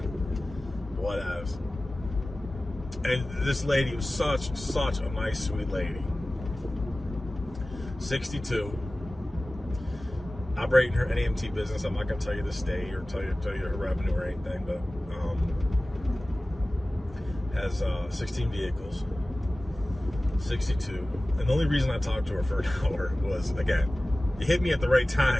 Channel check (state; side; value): normal; both; correlation 0.97